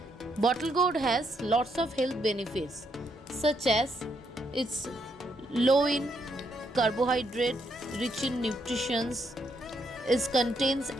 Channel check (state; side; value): normal; both; correlation 0.76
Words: Bottle gourd has lots of health benefits such as it's low in carbohydrate, rich in nutrition, it contains